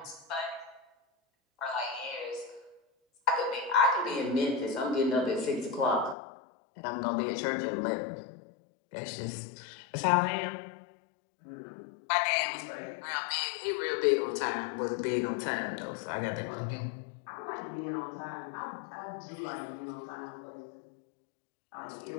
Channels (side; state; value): right; drops out; at 6.2 s